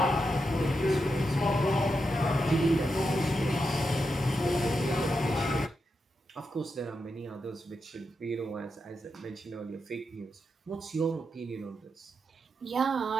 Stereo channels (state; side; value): normal; both; correlation 0.86